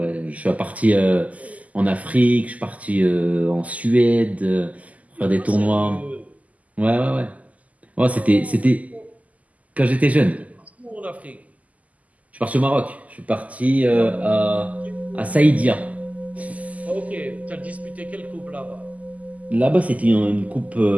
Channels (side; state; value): left; late; 0.074 ms